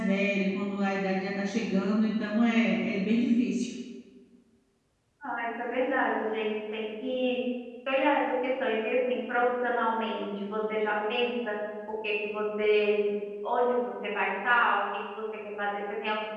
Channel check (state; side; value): identical; both; correlation 1.00